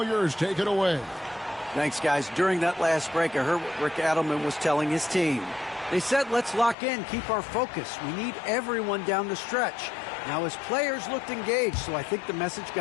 yours. Take it away. Thanks, guys. During that last break, I heard what Rick Adelman was telling his team. They said, let's lock in, keep our focus. We need everyone down the stretch. Now, his players looked engaged, so I think the message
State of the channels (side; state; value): right; drops out; at 6.8 s